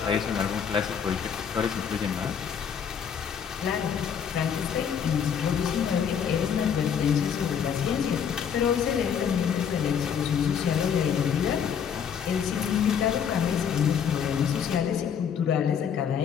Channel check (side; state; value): right; quieter; 7.7 dB